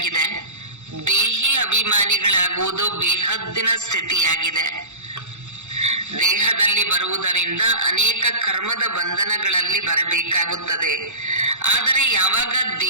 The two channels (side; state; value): left; late; 0.83 ms